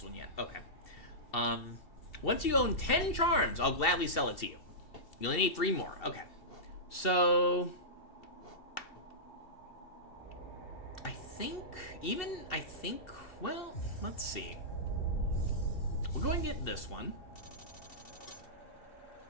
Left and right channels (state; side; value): late; right; 2.7 ms